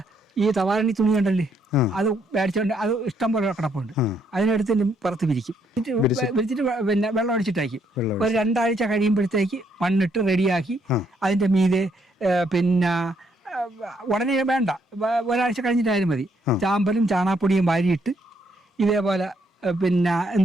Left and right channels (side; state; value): both; normal; correlation 0.72